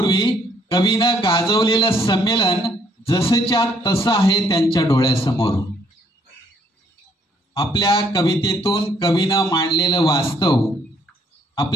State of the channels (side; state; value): both; normal; correlation 0.67